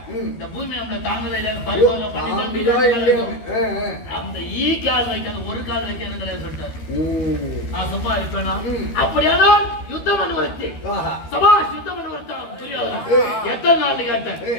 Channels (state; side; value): late; right; 12 ms